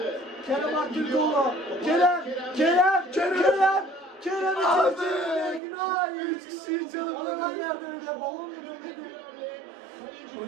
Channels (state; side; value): drops out; left; at 5.6 s